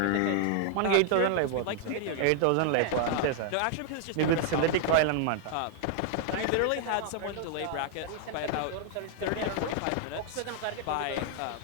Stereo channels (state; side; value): different; both; correlation 0.00